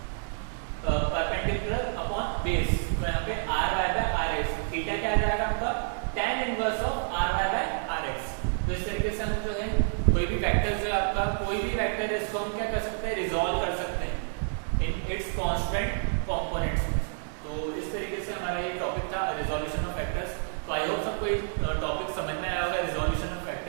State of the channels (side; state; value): left; silent; digital silence